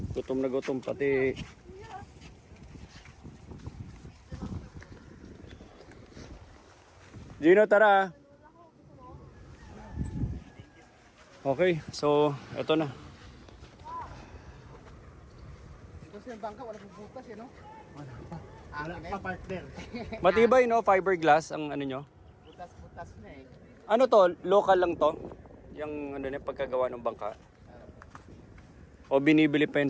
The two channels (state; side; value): identical; both; correlation 1.00